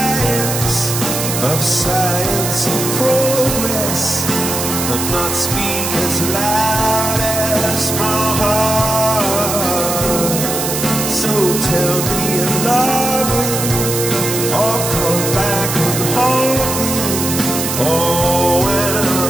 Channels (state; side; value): noise; right; hiss, 3 dB below the sound